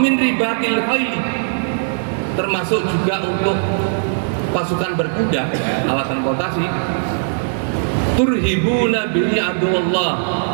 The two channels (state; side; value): silent; left; digital silence